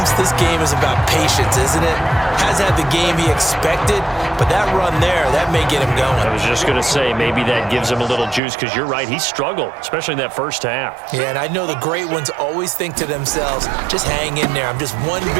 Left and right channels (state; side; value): drops out; left; at 8.4 s